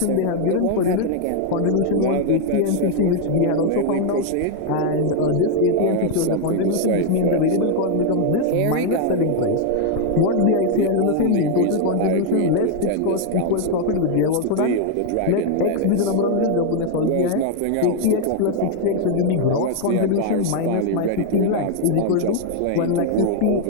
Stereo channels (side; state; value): both; different; correlation 0.00